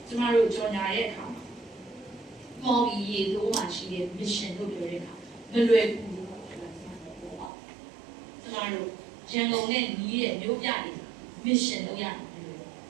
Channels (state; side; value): drops out; left; at 7.5 s